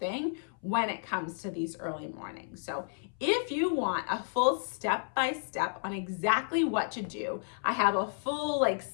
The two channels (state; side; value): silent; right; 57 dB below the other